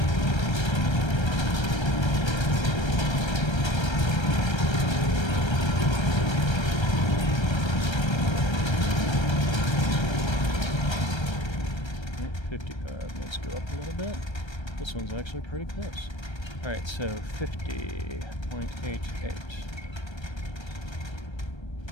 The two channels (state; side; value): late; right; 1.3 ms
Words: Let's go up a little bit. This one's actually pretty close. Alright, so 50.88.